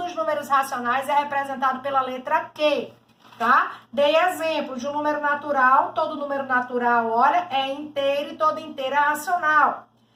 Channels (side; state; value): both; identical; correlation 1.00